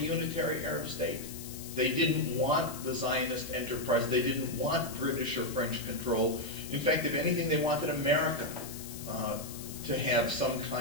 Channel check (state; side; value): noise; left; hiss, 12 dB below the sound